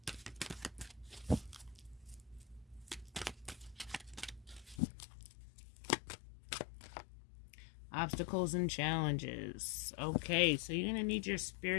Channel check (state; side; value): drops out; right; at 4.8 s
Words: Obstacles and challenges. Okay, so you're going to need your